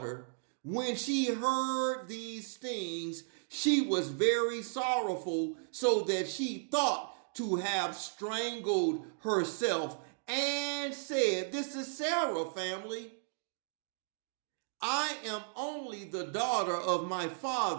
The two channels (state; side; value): silent; left; digital silence